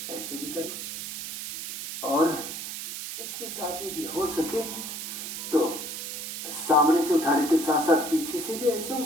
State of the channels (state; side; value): noise; right; hiss, 6 dB below the sound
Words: ऐसे भी करें, और इसके साथ ही भी हो सके तो सामने से उठाने के साथ साथ पीछे से भी ऐसे